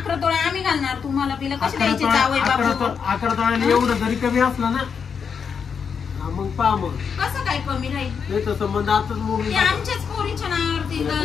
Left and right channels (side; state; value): right; quieter; 6.5 dB